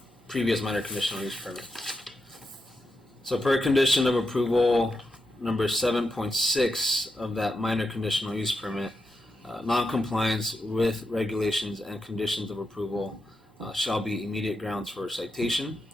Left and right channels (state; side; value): normal; both; correlation 0.87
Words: previous minor conditional use permit. So per condition of approval number 7.6 of that minor conditional use permit, non-compliance with regulations and conditions of approval shall be immediate grounds for citation.